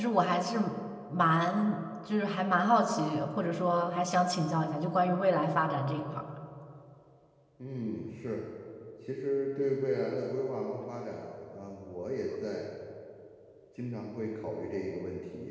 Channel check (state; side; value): identical; both; correlation 1.00